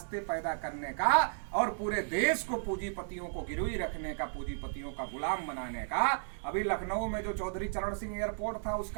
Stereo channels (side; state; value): left; silent; digital silence